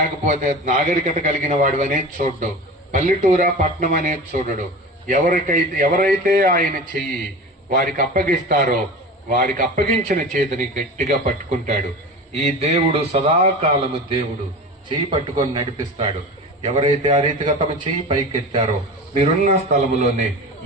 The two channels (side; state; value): both; normal; correlation 0.32